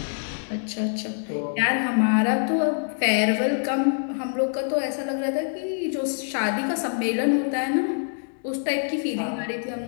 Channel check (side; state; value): right; silent; digital silence